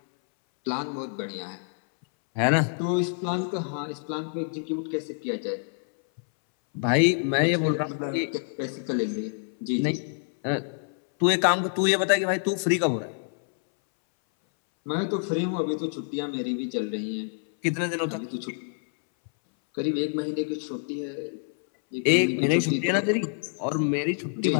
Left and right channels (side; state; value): right; silent; 60 dB below the other